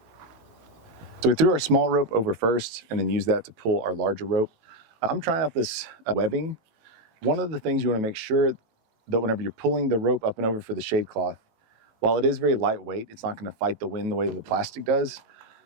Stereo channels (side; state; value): left; late; 18 ms